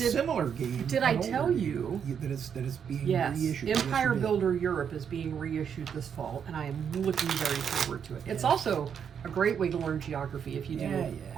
game. Did I an older tell game, you that it's being Yes, reissued? Empire Yes, you did. Builder Europe is being reissued this fall, and I am looking very forward to it. It's Yeah. also a great way to learn geography if you do Yeah,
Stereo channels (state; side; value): quieter; left; 7.7 dB